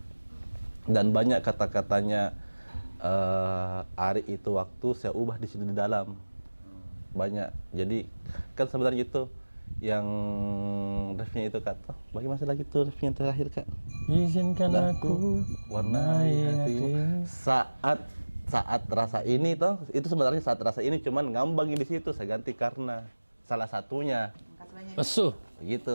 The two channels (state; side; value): inverted; both; correlation -1.00